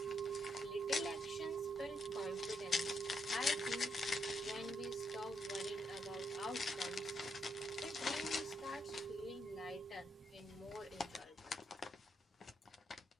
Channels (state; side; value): normal; both; correlation 0.78